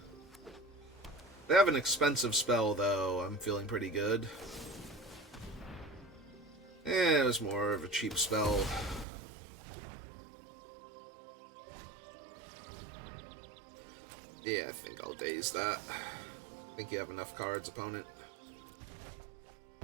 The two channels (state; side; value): drops out; left; at 9.1 s